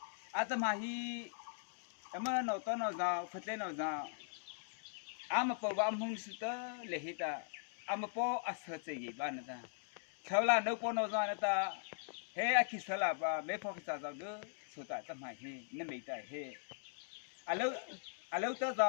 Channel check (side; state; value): right; silent; digital silence